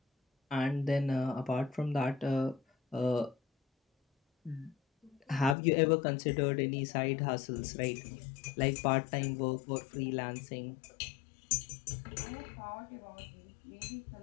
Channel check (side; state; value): right; drops out; at 5.6 s